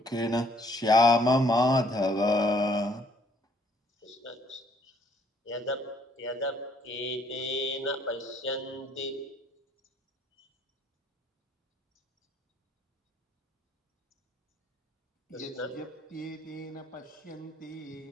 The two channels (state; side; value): normal; both; correlation 0.64